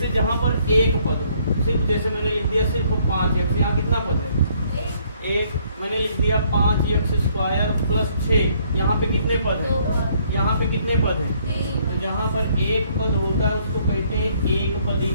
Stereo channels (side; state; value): both; inverted; correlation -0.65